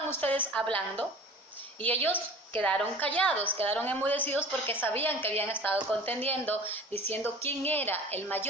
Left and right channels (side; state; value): both; normal; correlation 0.41